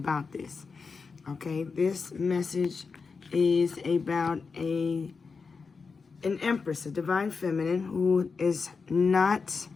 this. Okay, this message is about an empress, a divine feminine, who is not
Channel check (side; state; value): right; quieter; 4.9 dB